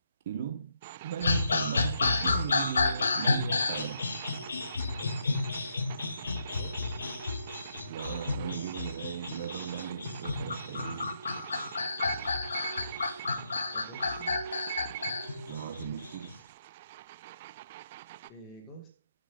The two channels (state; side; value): inverted; both; correlation -0.78